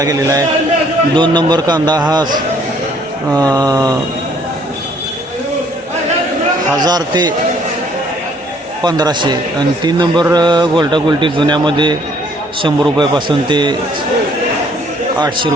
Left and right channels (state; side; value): normal; both; correlation 0.62